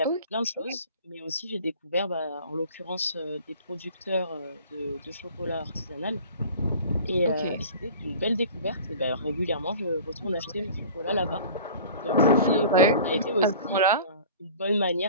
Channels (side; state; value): both; inverted; correlation -0.43